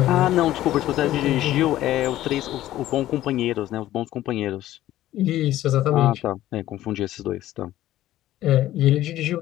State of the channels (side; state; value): right; quieter; 14.2 dB